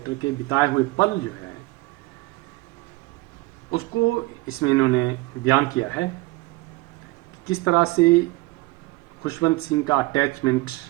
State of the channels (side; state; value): left; quieter; 21.0 dB